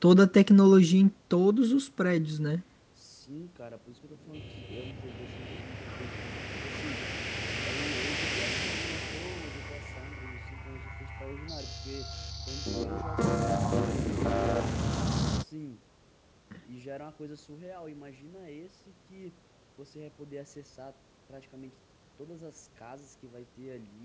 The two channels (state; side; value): identical; both; correlation 1.00